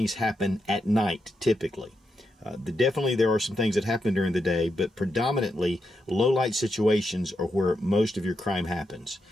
happen at night typically. Definitely there are some things that happen during the day, but predominantly low light situations are where most of your crime happens.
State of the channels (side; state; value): both; normal; correlation 0.84